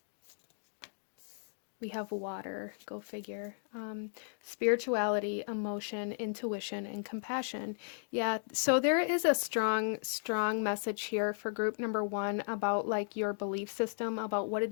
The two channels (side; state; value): right; silent; digital silence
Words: We have water, go figure. Spirituality, emotion, intuition, and compassion. Yeah, so there is a strong message here for group number one about like your belief system, about what it